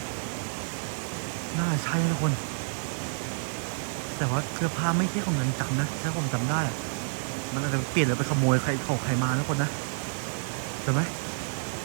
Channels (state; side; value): silent; left; 59 dB below the other